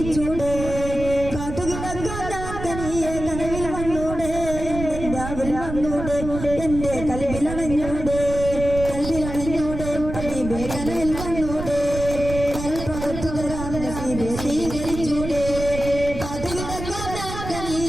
കാത്തുകിടക്കാനിയെ കനവിൽ വന്നൂടെ രാവിൽ വന്നൂടെ എന്റെ കൽബിലണഞ്ഞൂടെ കൽബിലണഞ്ഞൂടെ ഹബീബേ കനവിൽ വന്നൂടെ കരൾ പഴുത്തു തരാം നസീബേ സ്വീകരിച്ചൂടെ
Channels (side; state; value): right; noise; rumble, 8 dB below the sound